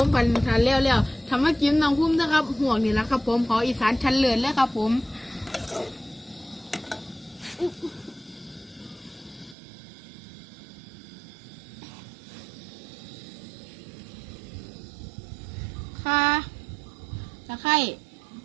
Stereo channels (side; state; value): left; drops out; at 9.6 s